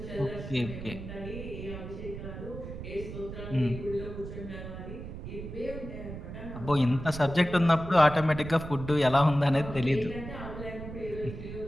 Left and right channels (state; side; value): noise; right; rumble, 10 dB below the sound